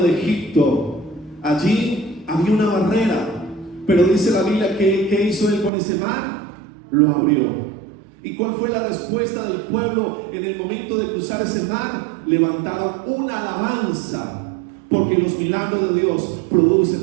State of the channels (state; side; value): drops out; left; at 5.7 s